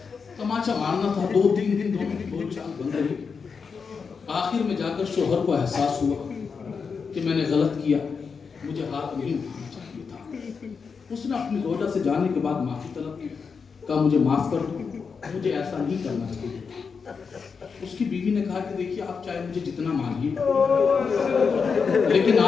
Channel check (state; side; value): quieter; right; 5.6 dB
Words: تماچا مارنا تھا. 2-3 دن دونوں کی بول چال بند رہی. آخر میں جا کر شوہر کو احساس ہوا کہ میں نے غلط کیا، مجھے ہاتھ نہیں اٹھانا چاہیے تھا. اس نے اپنی زوجہ سے جانے کے بعد معافی طلب کی. کہا مجھے معاف کر دو، مجھے ایسا نہیں کرنا چاہیے. اس کی بیوی نے کہا کہ دیکھیے آپ چاہے مجھے جتنا مانیے لیکن